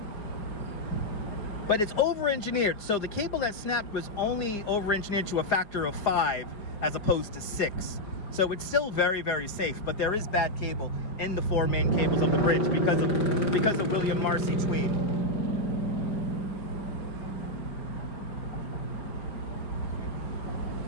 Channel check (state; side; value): late; right; 4.9 ms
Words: But it's over-engineered. So the cable that snapped was only over-engineered to a factor of 5 as opposed to 6. So it's still very, very safe, but there is bad cable in the 4 main cables of the bridge because of William Marcy Tweed.